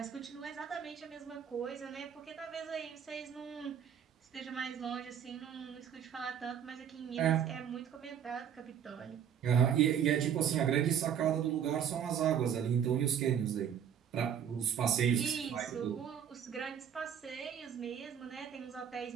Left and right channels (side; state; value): left; quieter; 8.6 dB